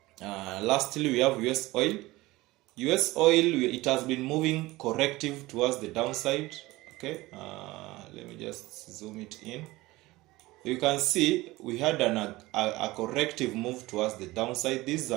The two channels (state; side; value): quieter; left; 19.4 dB